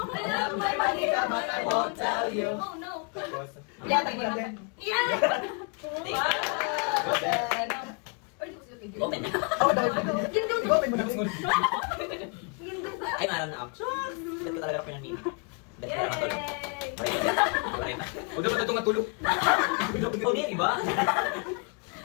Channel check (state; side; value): quieter; right; 35.6 dB